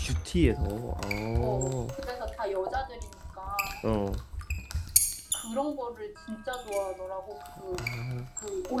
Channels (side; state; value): both; identical; correlation 1.00